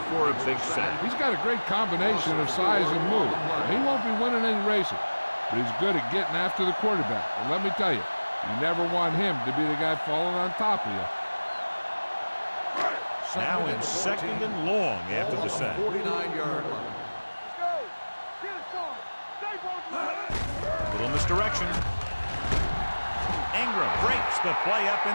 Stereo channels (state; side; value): inverted; both; correlation -1.00